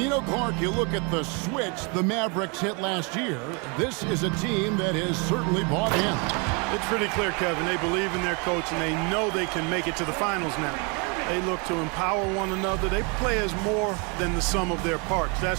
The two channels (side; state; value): left; quieter; 32.6 dB